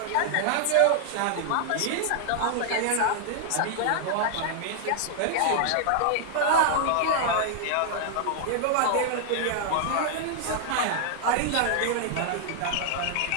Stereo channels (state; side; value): different; both; correlation 0.00